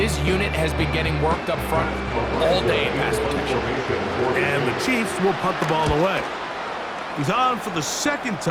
unit has been getting worked up front all day in pass protection. And the Chiefs will punt the ball away. He's on for the 2nd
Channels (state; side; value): identical; both; correlation 1.00